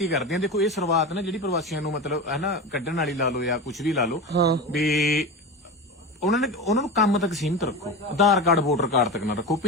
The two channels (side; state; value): both; normal; correlation 0.25